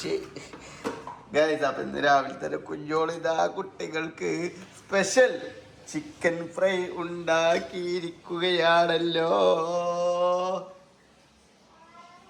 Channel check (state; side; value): identical; both; correlation 1.00